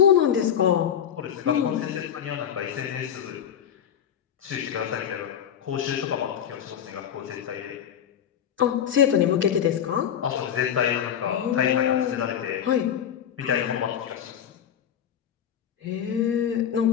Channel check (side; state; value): right; quieter; 9.1 dB